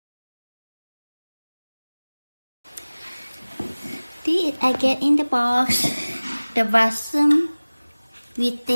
I get in the box the vacuum with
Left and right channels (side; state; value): both; inverted; correlation -1.00